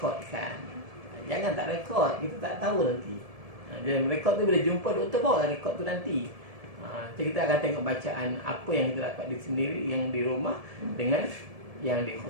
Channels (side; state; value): left; late; 1.7 ms